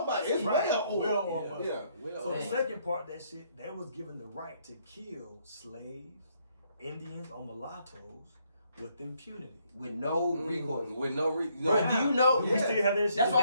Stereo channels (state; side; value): inverted; both; correlation -0.70